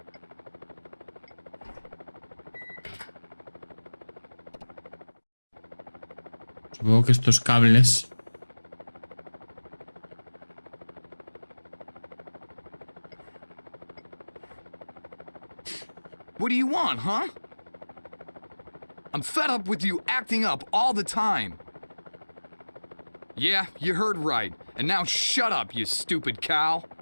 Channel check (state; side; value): inverted; both; correlation -1.00